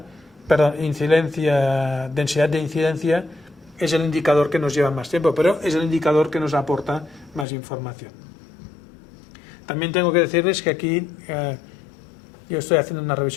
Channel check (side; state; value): right; drops out; at 7.5 s